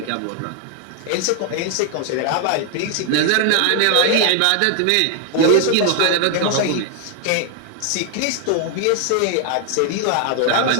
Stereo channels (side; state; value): both; different; correlation 0.00